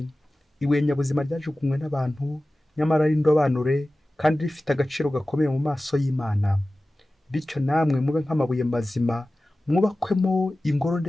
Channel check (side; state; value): both; normal; correlation 0.96